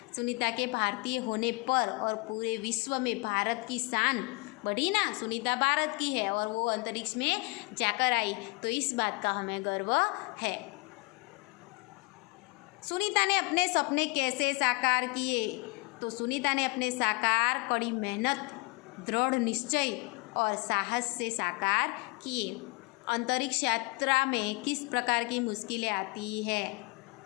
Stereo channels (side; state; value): right; quieter; 27.1 dB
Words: सुनीता के भारतीय होने पर और पूरे विश्व में भारत की शान बढ़ी ना। सुनीता भारत की है और वो अंतरिक्ष में जाकर आई, तो इस बात का हमें गर्व है। सुनीता ने अपने सपने कैसे साकार किए? तो सुनीता ने अपने साकार कड़ी मेहनत, दृढ़ निश्चय और साहस से साकार किए। अंतरिक्ष यात्रा में किस प्रकार की मुश्किलें आती है,